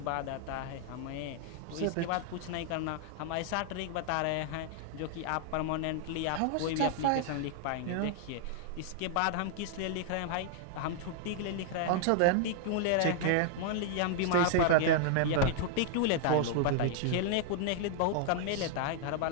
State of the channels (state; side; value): different; both; correlation 0.00